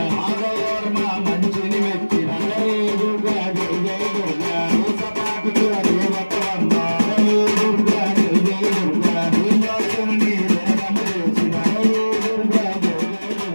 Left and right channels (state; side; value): inverted; both; correlation -1.00